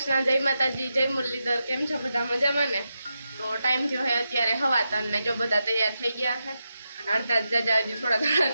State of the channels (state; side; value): inverted; both; correlation -0.88